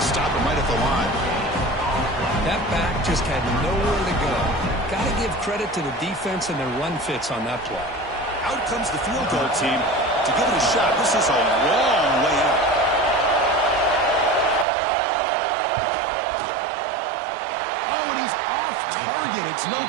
stop him right at the line. That back just had nowhere to go. Got to give credit to the defense and their run fits on that play. Out comes the field goal team to give it a shot. This is a long way out. Oh, and he's off target. It's no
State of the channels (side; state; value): left; drops out; at 14.7 s